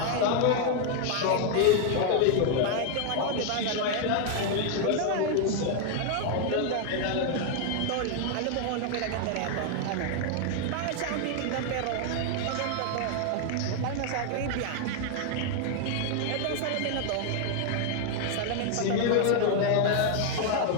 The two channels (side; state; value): both; different; correlation 0.00